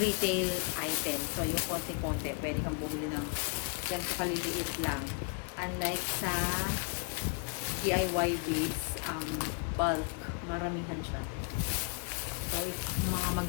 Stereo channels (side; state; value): right; quieter; 36.6 dB